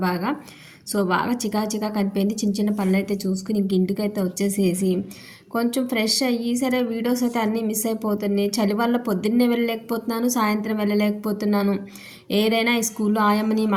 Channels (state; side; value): identical; both; correlation 1.00